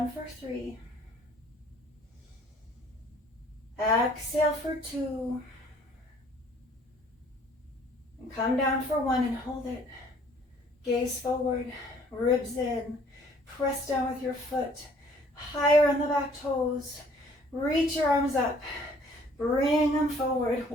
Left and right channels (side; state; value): both; normal; correlation 0.58